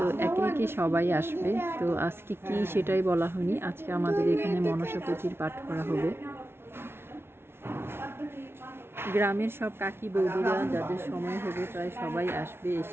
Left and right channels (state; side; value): late; left; 0.12 ms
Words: একে একে সবাই আসবে। তো আজকে কি সেটাই বলা হয়নি। আজকে আমাদের এখানে মনসা পুঁথির পাঠ করা হবে। গ্রামের সব কাকি বৌদিরা যাদের সময় হবে প্রায় সবাই আসবে,